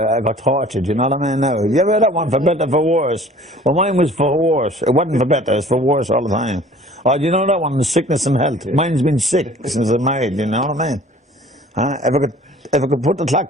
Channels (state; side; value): normal; both; correlation 0.49